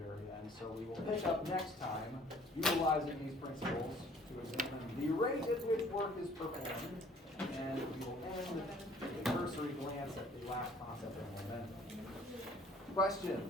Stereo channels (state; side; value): normal; both; correlation 0.56